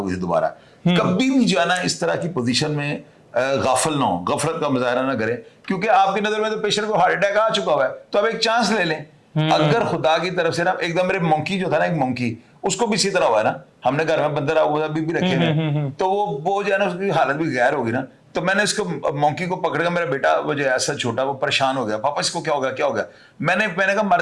गई दोबारा। कभी भी जो है ना इस तरह की पोजीशन में गाफिल ना हो, गफलत का मुजाहरा ना करें, क्योंकि आपकी नजर में तो पेशेंट को हार्ट अटैक आ चुका हुआ है, तो आप एक चांस ले लें। अगर खुदा की तरफ से ना एकदम, मेरे मंकी जो था ना, एक मंकी, उसको भी इसी तरह हुआ है ना, हमने घर में बंदर अभी भी रखे हैं, तो वो जो है ना उसकी हालत भी गैर होगी ना। तो मैंने इसको मंकी को पकड़ कर, मेरा बेटा वो जो ऐसा छोटा वो परेशान हो गया, पापा इसको क्या हो गया क्या हो गया। मैंने कहा मर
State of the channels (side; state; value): both; identical; correlation 1.00